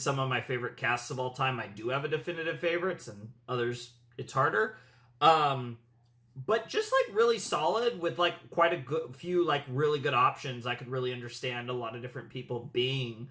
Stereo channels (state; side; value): identical; both; correlation 1.00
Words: of my favorite casts of all time, I do have a definitive favorites, and others, it's harder. But just, like, really solid with, like, quite a few, like, really good options. I could really understand a lot of different people being